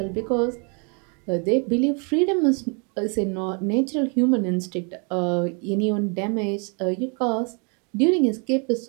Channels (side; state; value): left; quieter; 36.1 dB